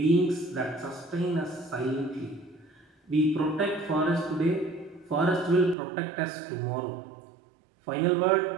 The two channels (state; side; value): drops out; left; at 5.8 s